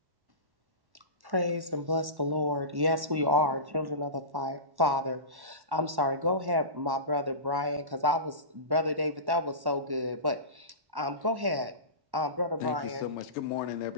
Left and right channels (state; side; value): late; left; 1.1 ms